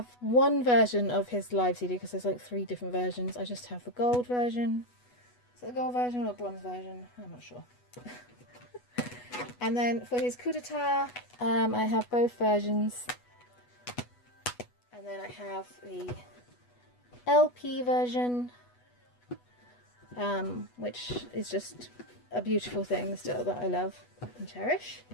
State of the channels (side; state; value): right; late; 8.2 ms